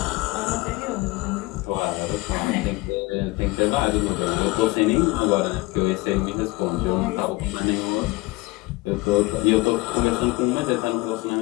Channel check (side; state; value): right; quieter; 22.0 dB